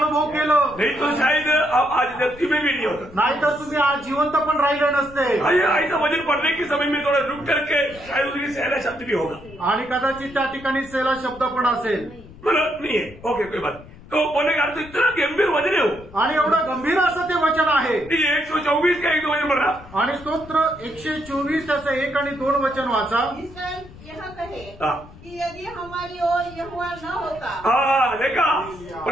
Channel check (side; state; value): left; noise; rumble, 19 dB below the sound